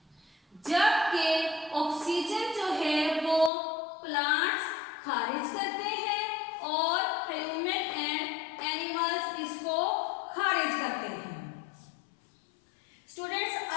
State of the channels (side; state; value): right; drops out; at 3.5 s